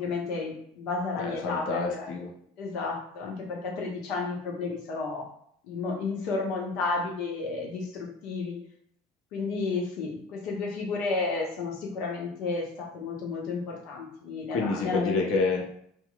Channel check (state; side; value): quieter; right; 3.5 dB